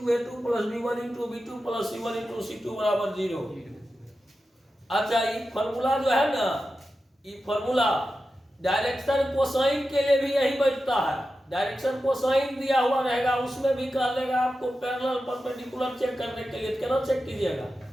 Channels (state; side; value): normal; both; correlation 0.91